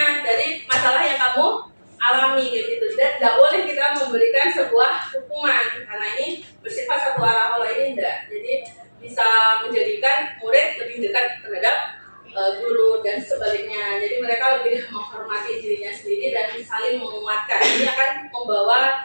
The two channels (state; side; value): inverted; both; correlation -1.00